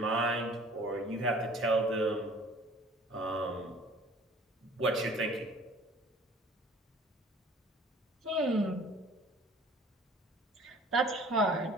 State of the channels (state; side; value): normal; both; correlation 0.50